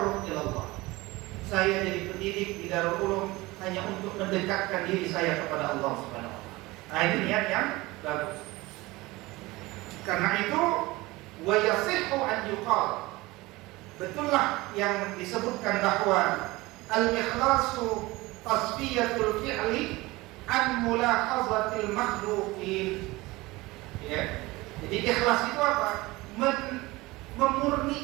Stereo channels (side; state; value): left; quieter; 21.0 dB